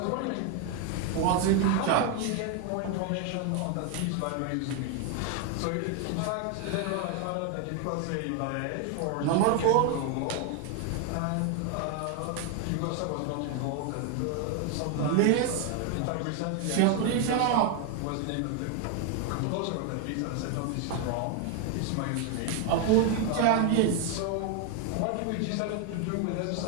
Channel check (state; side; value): different; both; correlation 0.01